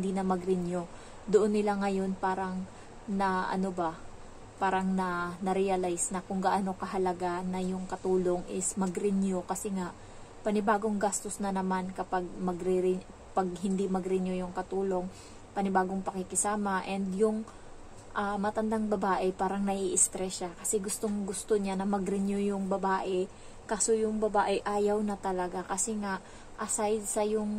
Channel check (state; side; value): identical; both; correlation 1.00